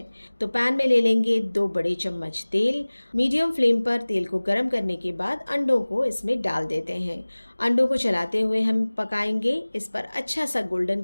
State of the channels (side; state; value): both; inverted; correlation -1.00